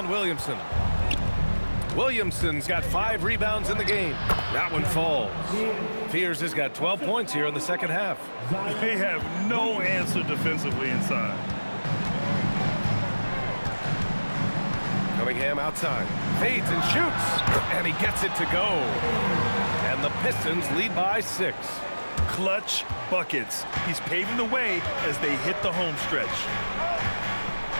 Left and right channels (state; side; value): inverted; both; correlation -1.00